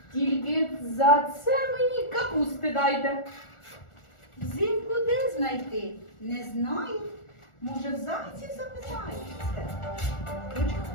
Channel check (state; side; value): late; right; 1.4 ms